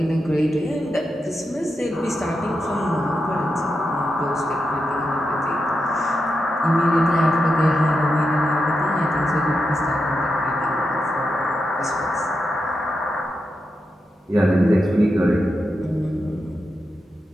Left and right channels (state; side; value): normal; both; correlation 0.87